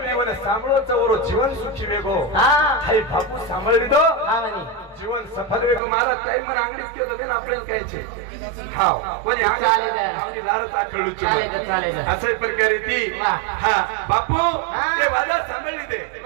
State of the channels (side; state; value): left; drops out; at 5.8 s